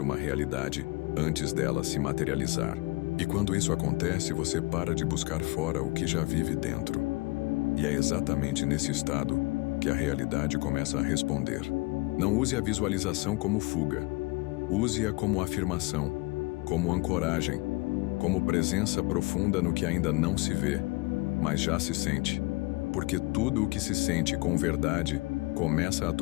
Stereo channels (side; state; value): right; quieter; 23.9 dB